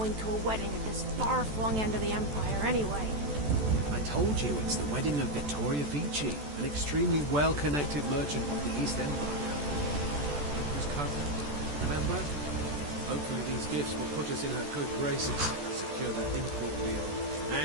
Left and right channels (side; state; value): left; late; 14 ms